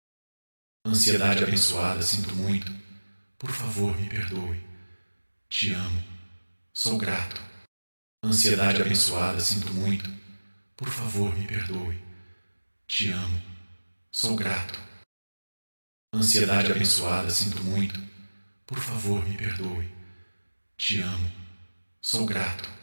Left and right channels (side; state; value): both; inverted; correlation -1.00